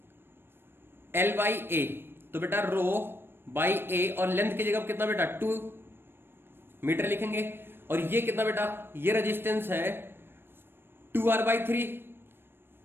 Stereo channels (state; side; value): late; left; 0.10 ms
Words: L by A, तो बेटा रो बाई ए और लेंथ की जगह कितना बेटा 2 मीटर लिखेंगे, और ये कितना बेटा ये रेजिस्टेंस है 2R by 3